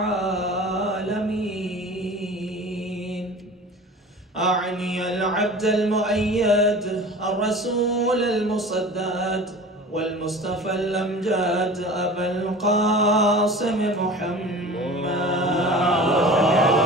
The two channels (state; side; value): normal; both; correlation 0.39